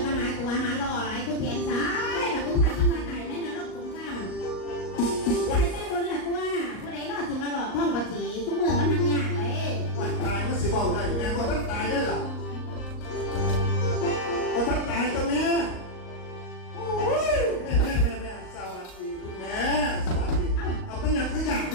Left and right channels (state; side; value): late; right; 38 ms